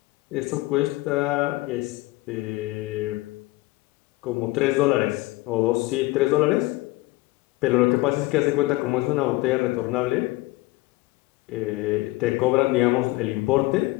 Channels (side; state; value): right; quieter; 20.2 dB